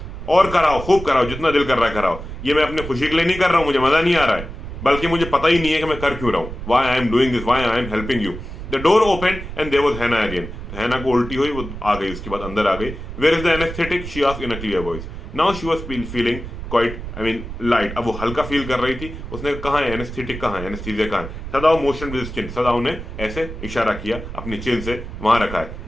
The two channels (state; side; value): noise; right; rumble, 9 dB below the sound